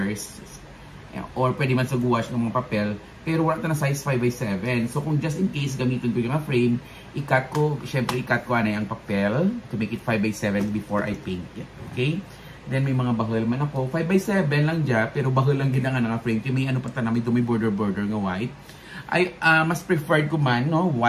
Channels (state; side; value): identical; both; correlation 1.00